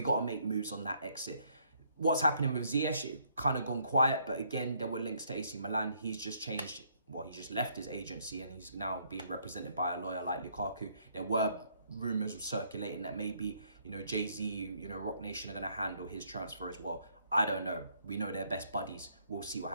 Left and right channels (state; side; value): inverted; both; correlation -0.68